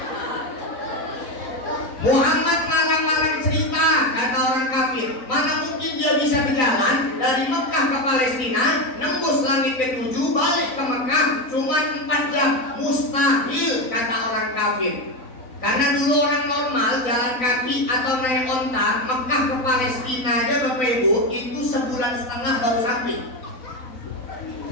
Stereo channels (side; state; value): right; late; 4.0 ms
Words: Muhammad ngarang-ngarang cerita, kata orang kafir. Mana mungkin dia bisa berjalan dari Mekah ke Palestina, nembus langit ke-7, balik ke Mekah cuma 4 jam. Mustahil, kata orang kafir. Karena dulu orang normal jalan kaki atau naik onta Mekah ke Palestina aja Bapak Ibu itu 1,5 bulan baru sampai.